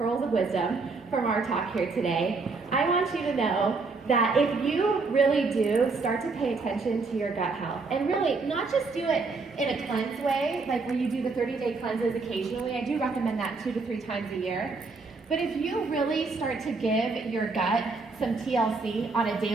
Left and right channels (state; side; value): quieter; left; 4.1 dB